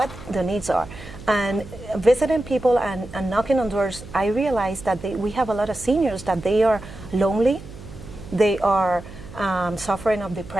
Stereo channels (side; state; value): right; noise; hum, 15 dB below the sound